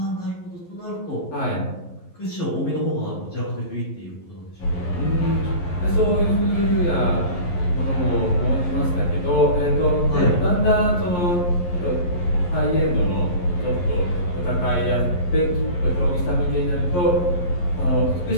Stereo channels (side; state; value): right; late; 11 ms